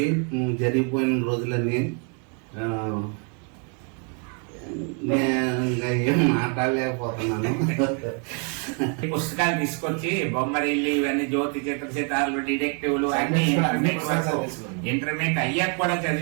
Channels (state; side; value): quieter; left; 38.3 dB